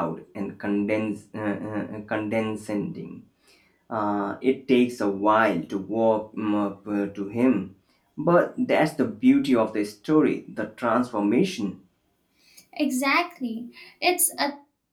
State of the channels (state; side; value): identical; both; correlation 1.00